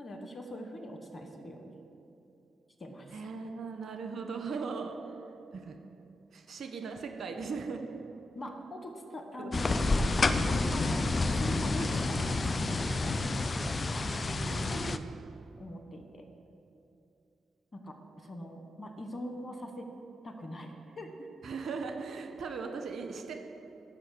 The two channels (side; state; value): both; normal; correlation 0.89